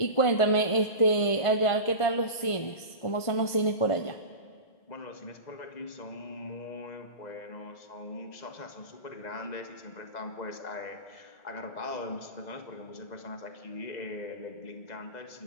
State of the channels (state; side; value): late; right; 1.5 ms